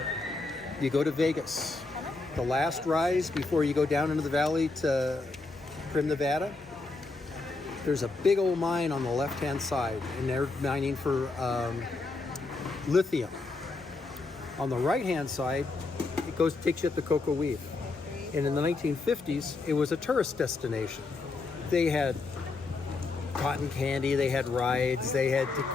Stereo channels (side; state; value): right; quieter; 3.6 dB